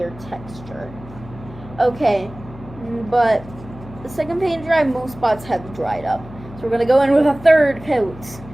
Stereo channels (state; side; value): noise; left; hum, 17 dB below the sound